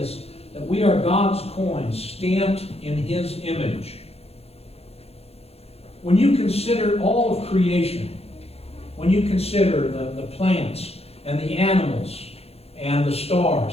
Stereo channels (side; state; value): right; late; 0.29 ms